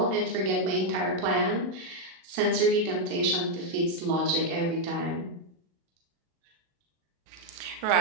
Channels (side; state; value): left; late; 40 ms